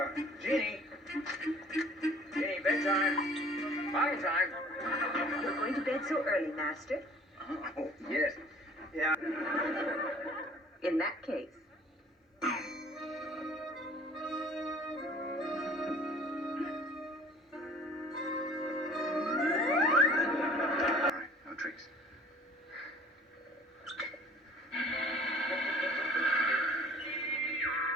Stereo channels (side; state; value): both; normal; correlation 0.51